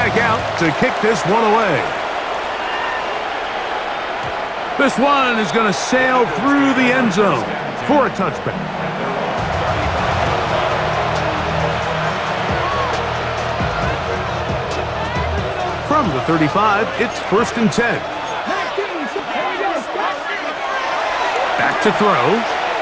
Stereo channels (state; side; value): identical; both; correlation 1.00